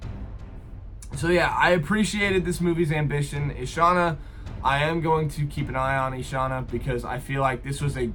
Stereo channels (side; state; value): both; identical; correlation 1.00